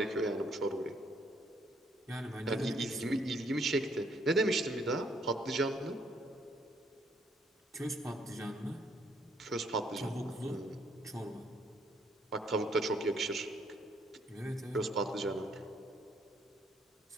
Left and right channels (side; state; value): both; normal; correlation 0.69